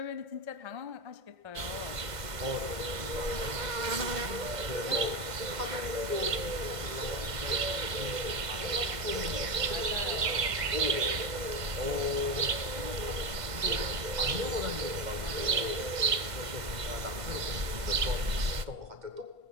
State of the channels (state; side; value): late; left; 1.5 ms